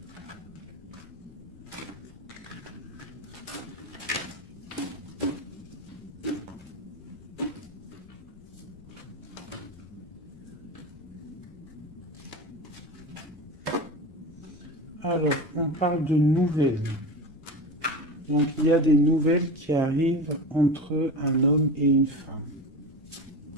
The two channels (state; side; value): noise; left; rumble, 22 dB below the sound